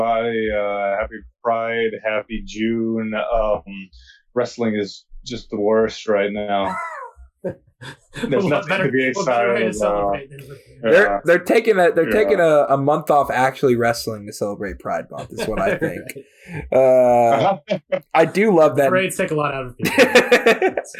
Happy Pride, happy June. Wrestling is just the worst right now. There's nothing to be excited about. They're taking a month off actually wrestling to celebrate Pride Month is what I think. I do love that. Parades take a lot out of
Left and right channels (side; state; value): both; identical; correlation 1.00